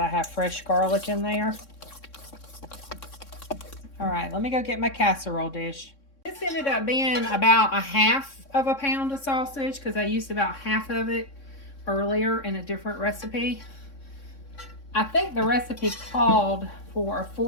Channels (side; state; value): right; late; 3.6 ms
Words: have fresh garlic in there. All right, let me go get my casserole dish. This ended up being about 1/2 pound of sausage because I used about half of it earlier in a different recipe. I think the recipe called for